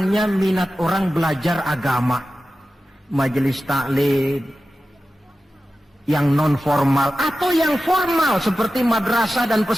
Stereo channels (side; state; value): both; normal; correlation 0.94